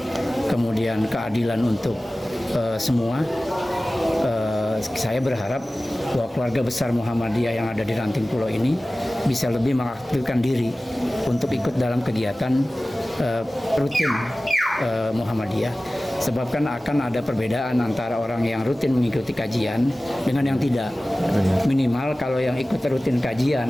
kemudian keadilan untuk semua. Saya berharap bahwa keluarga besar Muhammadiyah yang ada di Ranting Pulau ini bisa lebih mengaktifkan diri untuk ikut dalam kegiatan rutin Muhammadiyah. Sebab kan akan ada perbedaan antara orang yang rutin mengikuti kajian dengan yang tidak. Minimal kalau yang ikut rutin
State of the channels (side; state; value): both; normal; correlation 0.97